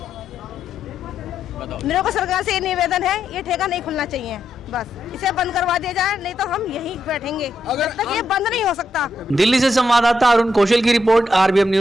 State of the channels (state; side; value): normal; both; correlation 0.80